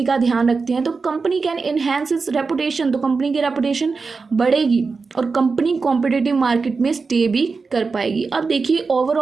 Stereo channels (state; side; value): quieter; left; 4.5 dB